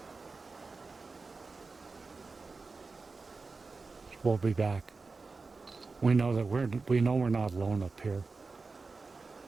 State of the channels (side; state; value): left; quieter; 4.1 dB